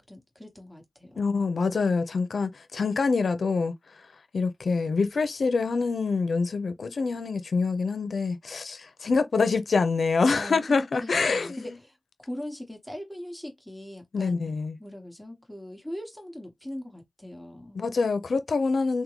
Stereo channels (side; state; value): right; quieter; 3.9 dB